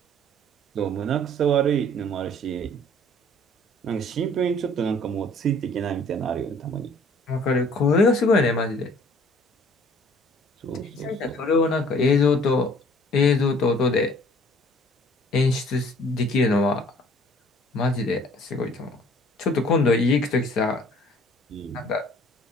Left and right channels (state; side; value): normal; both; correlation 0.55